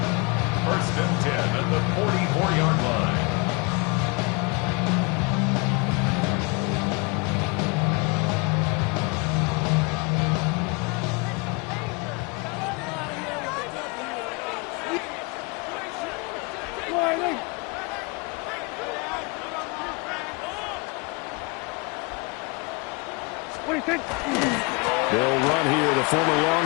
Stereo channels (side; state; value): right; quieter; 29.2 dB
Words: First and 10 at the 44-yard line. They'll run here, the former